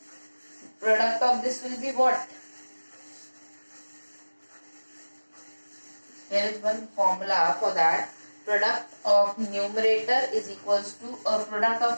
product of this will be what? There is one formula for that. Product of numerator is equals to product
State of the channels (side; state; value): both; inverted; correlation -1.00